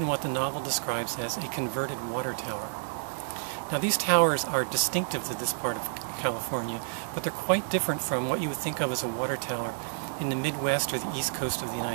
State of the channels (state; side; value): silent; left; digital silence